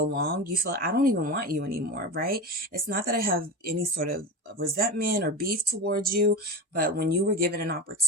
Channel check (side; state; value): both; normal; correlation 0.24